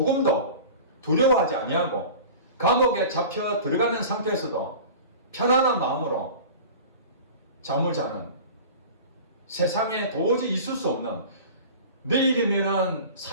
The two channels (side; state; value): both; inverted; correlation -0.37